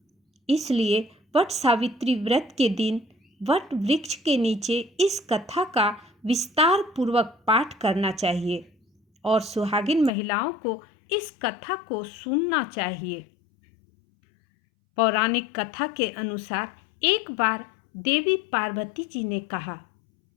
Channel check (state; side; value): drops out; right; at 10.1 s